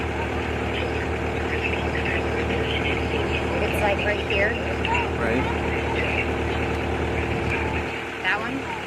It's like right here. Right. That one?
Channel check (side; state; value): both; identical; correlation 1.00